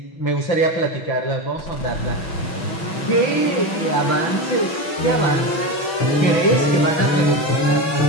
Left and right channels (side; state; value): right; late; 6.1 ms